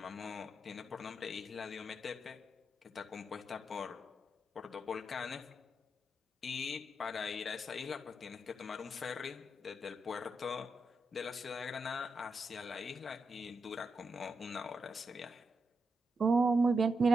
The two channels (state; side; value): normal; both; correlation 0.85